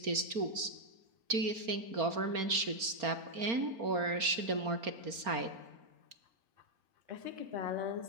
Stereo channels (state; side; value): late; left; 4.3 ms